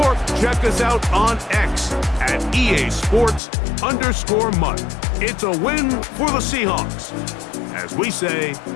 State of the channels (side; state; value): right; drops out; at 3.4 s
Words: check us out on X at EA Sports_MUT. It's a win for the Seahawks. As we say,